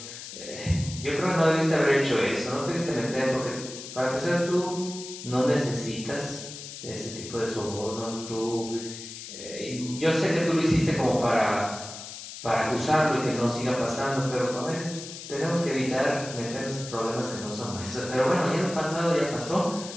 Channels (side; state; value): left; noise; hiss, 11 dB below the sound